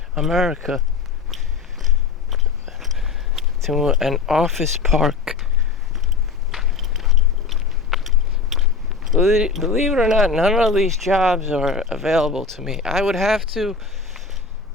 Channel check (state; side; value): quieter; right; 4.6 dB